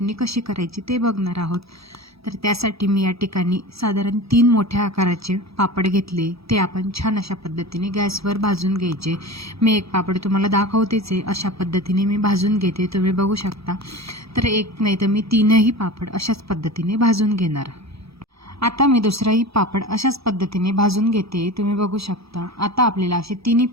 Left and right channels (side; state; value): left; late; 0.77 ms